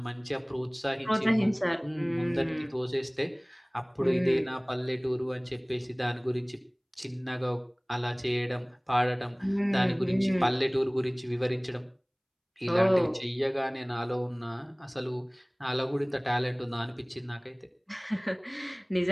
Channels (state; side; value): identical; both; correlation 1.00